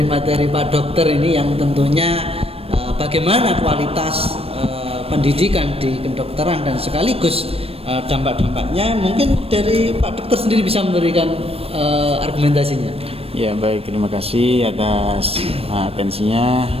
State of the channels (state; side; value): late; left; 0.28 ms